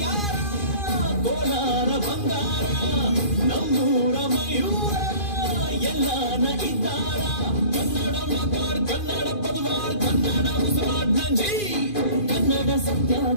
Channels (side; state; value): right; late; 2.5 ms